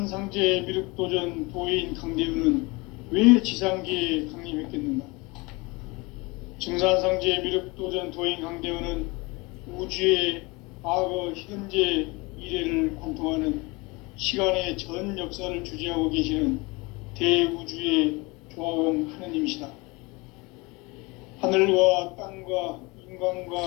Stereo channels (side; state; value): right; quieter; 25.5 dB